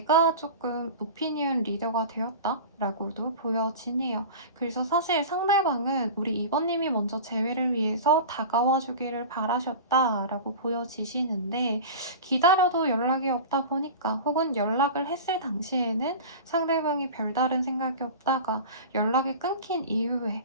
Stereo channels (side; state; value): both; inverted; correlation -0.33